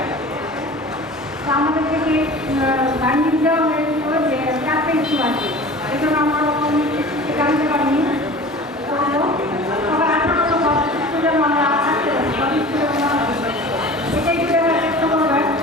আমাদের থেকে গার্নিং দেওয়া হয়েছিল যে 4টা ইস্যু আছে, এই জন্য আমরা জানতে পারিনি। সবার 18 স্টুডেন্ট আমরা থাকতে পারি, সব স্টুডেন্ট এটাই যদি আমরা চেষ্টা করবেন।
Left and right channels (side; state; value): both; normal; correlation 0.39